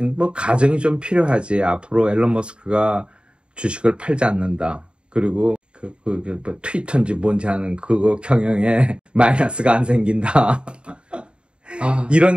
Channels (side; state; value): left; late; 0.054 ms